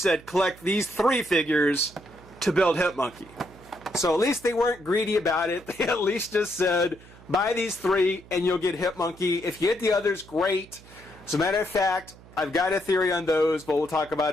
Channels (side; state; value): right; noise; hum, 22 dB below the sound